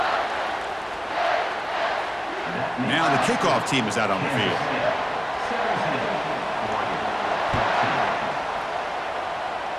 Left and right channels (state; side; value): identical; both; correlation 1.00